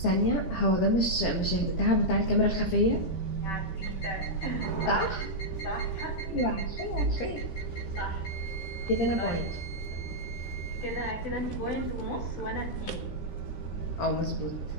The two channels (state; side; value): late; right; 17 ms